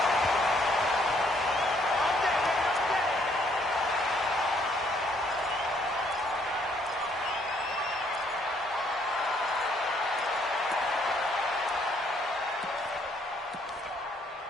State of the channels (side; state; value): both; normal; correlation 0.67